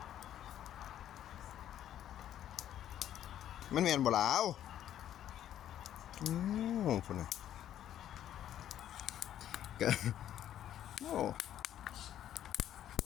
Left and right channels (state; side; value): quieter; right; 11.2 dB